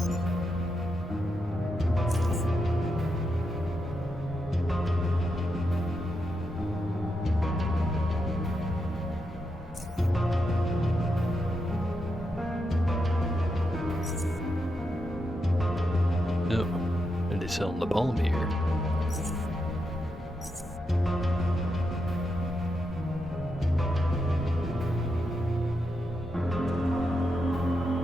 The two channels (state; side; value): normal; both; correlation 0.85